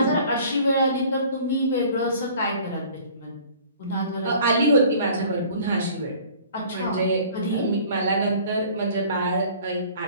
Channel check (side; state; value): both; inverted; correlation -0.50